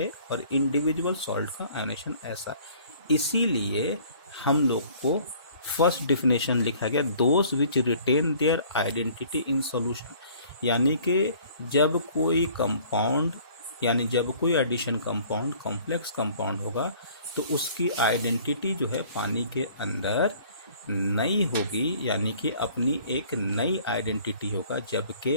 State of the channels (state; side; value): inverted; both; correlation -0.54